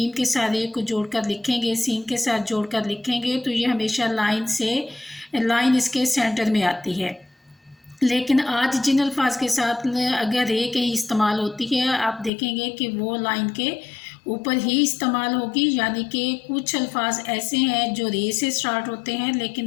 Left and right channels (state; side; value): drops out; right; at 12.3 s